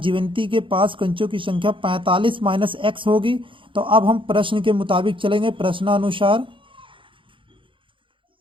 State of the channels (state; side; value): late; left; 0.25 ms